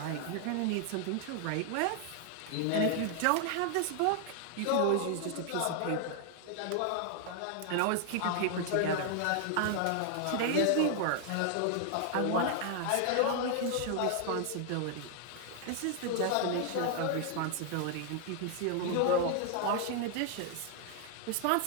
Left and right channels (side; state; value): both; different; correlation 0.00